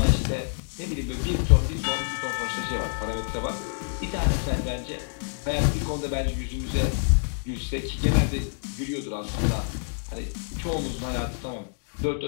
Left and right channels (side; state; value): right; silent; digital silence